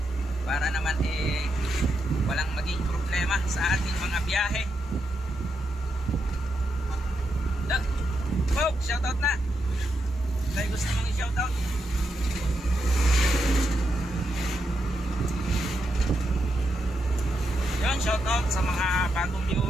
Para naman walang maging problema sa ating mga biyahe. Shoutout na. May gusto mong i-shoutout? Yun, shoutout sa mga bagong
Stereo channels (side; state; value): both; normal; correlation 0.83